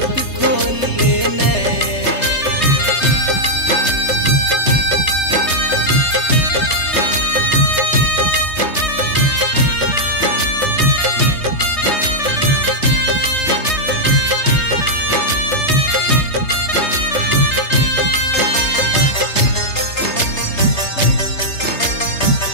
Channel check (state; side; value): late; right; 3.3 ms